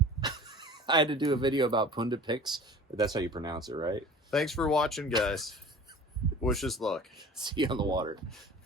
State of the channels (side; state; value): both; normal; correlation 0.42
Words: I had to do a video about pundit picks. But that's how you pronounce it, right? Thanks for watching, guys. Wish us luck. See you on the water.